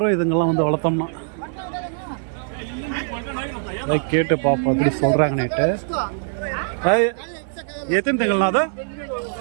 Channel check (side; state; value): left; silent; 59 dB below the other